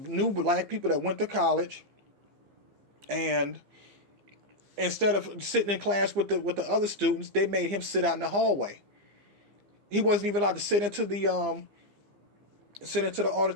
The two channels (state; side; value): late; left; 15 ms